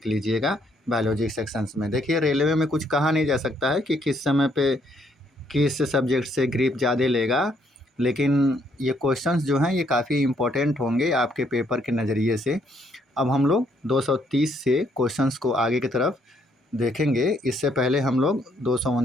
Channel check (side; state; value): both; normal; correlation 0.70